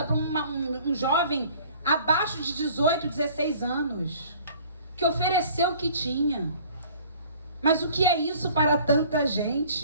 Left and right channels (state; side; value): inverted; both; correlation -0.51